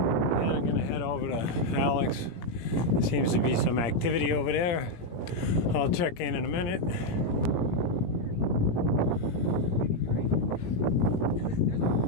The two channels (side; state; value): right; late; 17 ms